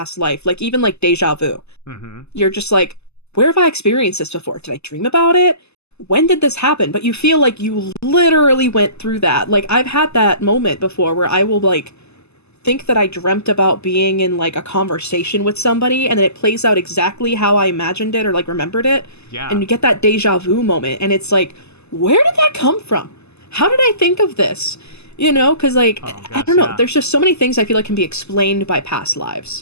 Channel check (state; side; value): late; right; 0.80 ms